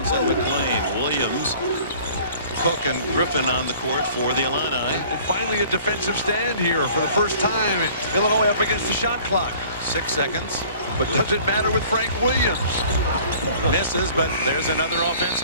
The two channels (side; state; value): both; inverted; correlation -0.50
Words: McLean, Williams, Cook, and Griffin on the court for the Illini. And finally a defensive stand here for the first time. Illinois up against the shot clock. 6 seconds. But does it matter with Frank Williams? Misses, but there's another